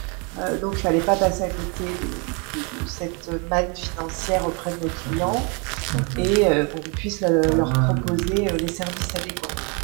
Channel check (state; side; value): quieter; left; 33.3 dB